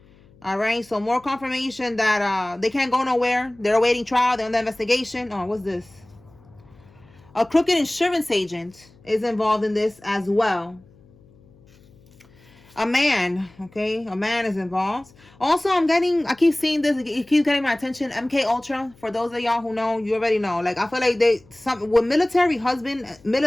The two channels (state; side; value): noise; left; hum, 28 dB below the sound